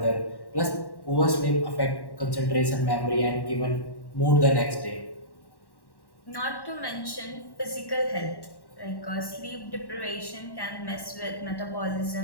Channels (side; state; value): right; late; 1.1 ms